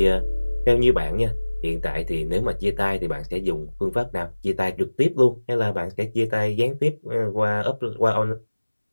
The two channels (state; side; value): inverted; both; correlation -1.00